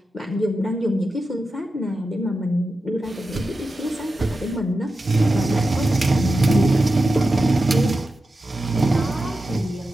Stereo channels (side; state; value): both; normal; correlation 0.91